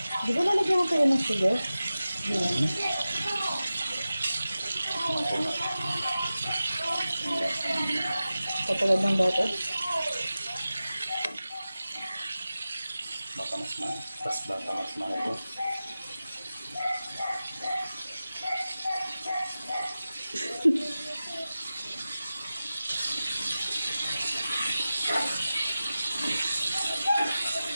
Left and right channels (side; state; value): both; inverted; correlation -0.95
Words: Di ba lalagyan mo kayo ng sugar? Katulad ng dati? Baka mas ito.